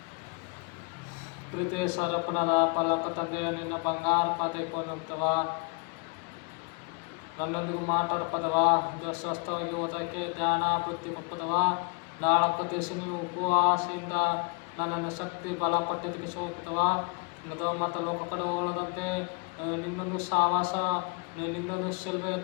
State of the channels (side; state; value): right; quieter; 32.3 dB